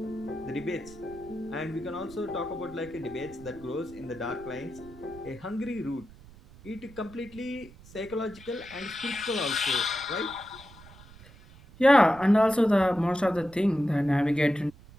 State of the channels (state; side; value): noise; right; rumble, 21 dB below the sound